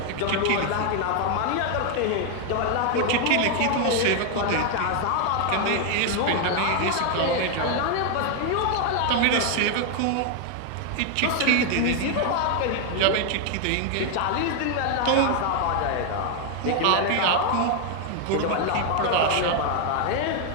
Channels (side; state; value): both; different; correlation 0.00